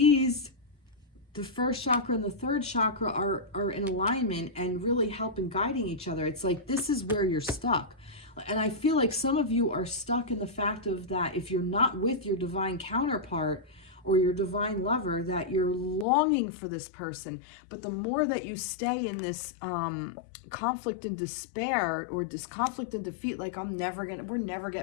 first chakra and the third chakra are in alignment and really helping guiding each other. It's like this is where you're stuck. And I feel like some of you are stuck in the fact of that if you're not with your divine counterpart or your divine lover, that you're longing for this person. But the more that you stay in this conflict and despair, or this conflict and defeat, like we're never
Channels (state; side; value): drops out; right; at 16.1 s